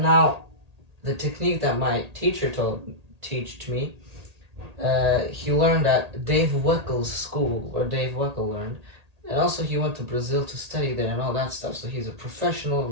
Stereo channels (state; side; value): late; left; 1.8 ms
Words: now the technique that my teacher taught me, he learned at Dave Weckel's school, where Dave Weckel learned, and also he went to Brazil to study there and all that stuff. So he's a professional,